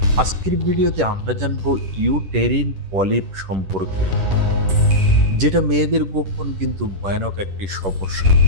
আজকের ভিডিওতে আমরা জানবো ইউটেরিন পলিপ সম্পর্কে, যেটা মেয়েদের গোপন কিন্তু ভয়ানক একটি সমস্যা।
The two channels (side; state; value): left; late; 10 ms